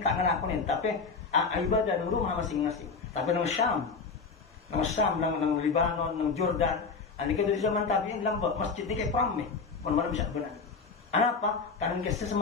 ngelakuin tapi ibadah di rumah masing-masing tapi nang Syam nang Lebanon nang Jordan nika dari zaman tabi'in lambak masjid nika prameh pun malam bisa benar apa karena kisah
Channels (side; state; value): right; quieter; 4.8 dB